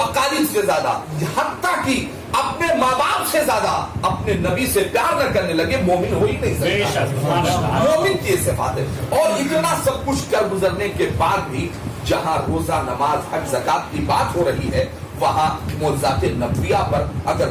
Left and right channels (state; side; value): identical; both; correlation 1.00